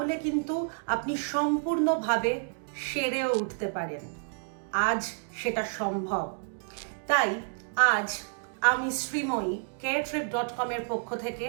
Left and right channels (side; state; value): left; silent; 58 dB below the other